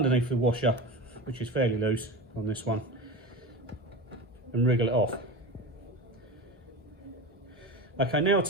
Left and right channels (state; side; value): normal; both; correlation 0.27